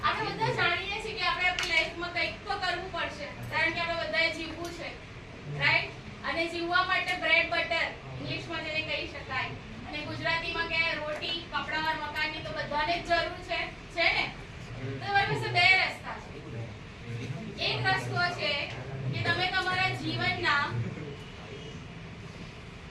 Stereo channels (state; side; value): identical; both; correlation 1.00